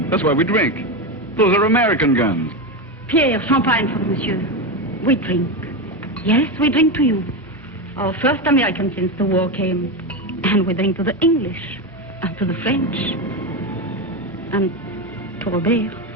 That's why we drink. Those are American guns. Pierre, champagne for monsieur. We drink. Yes, we drink to you. Our first American since the war came. And we drink to the English. And to the French. And to Robert.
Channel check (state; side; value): normal; both; correlation 0.14